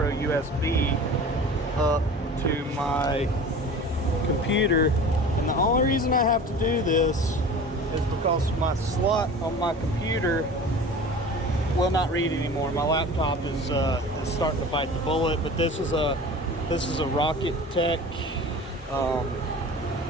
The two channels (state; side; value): normal; both; correlation 0.39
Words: up to my computer. And the only reason I have to do this is because my slot on my computer will not read anymore. My laptop is starting to bite the bullet, but this is a Rocket Tech